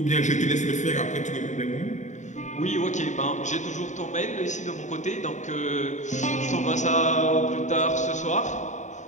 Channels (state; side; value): late; right; 0.35 ms